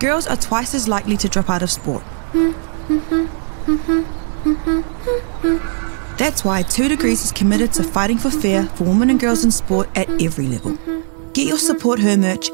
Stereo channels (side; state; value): left; silent; digital silence